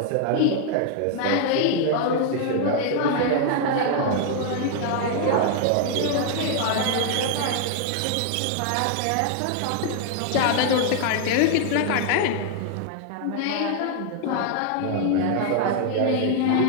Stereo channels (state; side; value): different; both; correlation 0.00